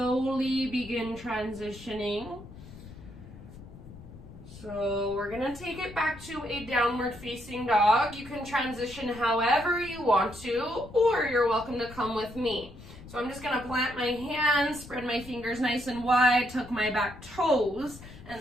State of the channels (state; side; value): noise; left; rumble, 17 dB below the sound